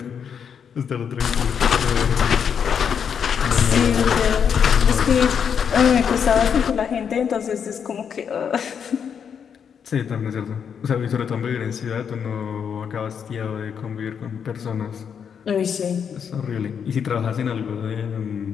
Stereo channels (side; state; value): right; quieter; 7.4 dB